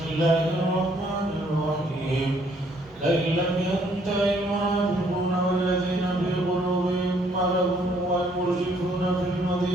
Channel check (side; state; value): both; normal; correlation 0.66